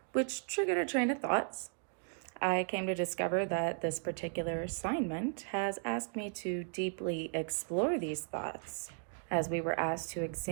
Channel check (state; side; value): silent; left; 54 dB below the other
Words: which triggered a train of thoughts. I came to discover that this particular assignment has asked me to deeply explore these thoughts as we were asked to